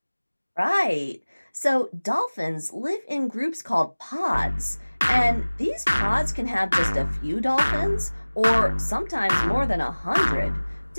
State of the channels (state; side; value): inverted; both; correlation -1.00